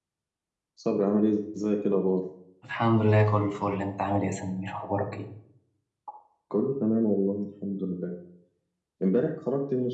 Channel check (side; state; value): both; identical; correlation 1.00